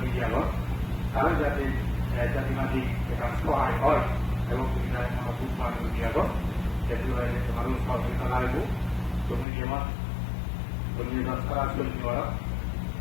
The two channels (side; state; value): right; drops out; at 9.5 s